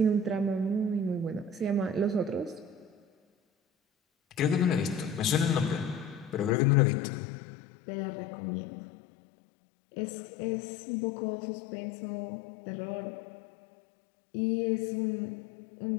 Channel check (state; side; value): drops out; right; at 6.6 s